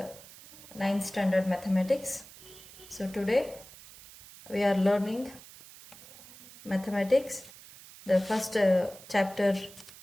9th standard mathematics. So today we are learning mathematics, the first chapter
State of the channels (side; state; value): right; noise; hiss, 19 dB below the sound